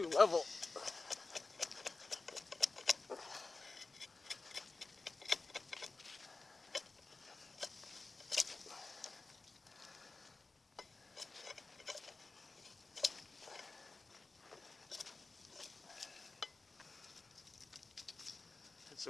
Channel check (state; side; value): quieter; right; 3.6 dB